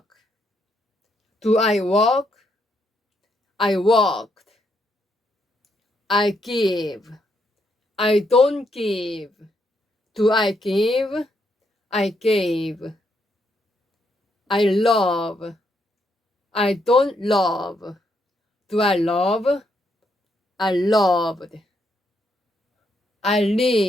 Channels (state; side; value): normal; both; correlation 0.76